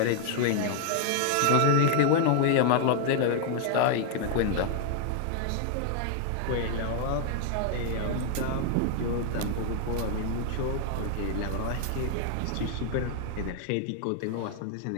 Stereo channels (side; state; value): both; different; correlation 0.00